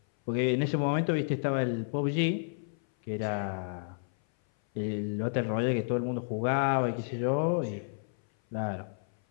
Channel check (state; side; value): silent; right; 56 dB below the other